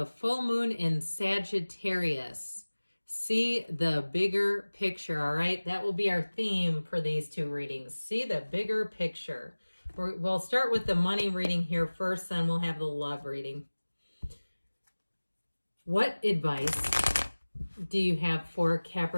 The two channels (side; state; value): both; inverted; correlation -1.00